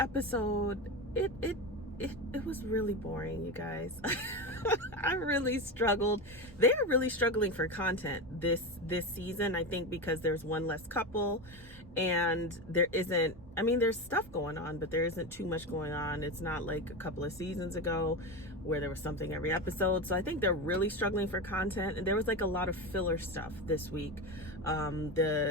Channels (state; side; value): normal; both; correlation 0.19